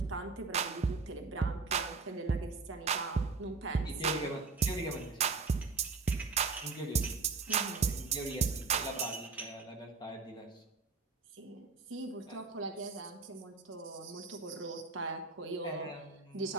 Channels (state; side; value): quieter; left; 4.4 dB